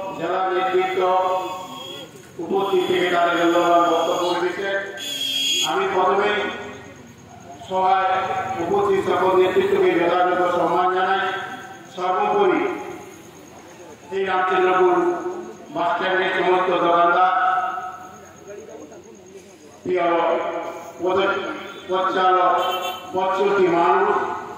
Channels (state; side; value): identical; both; correlation 1.00